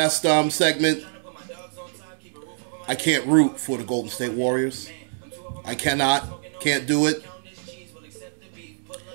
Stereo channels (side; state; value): left; silent; digital silence